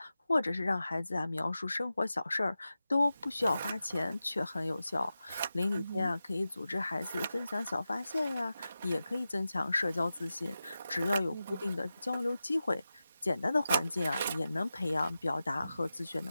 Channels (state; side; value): inverted; both; correlation -0.93